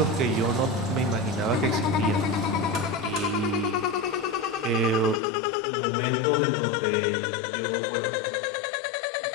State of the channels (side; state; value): right; drops out; at 5.2 s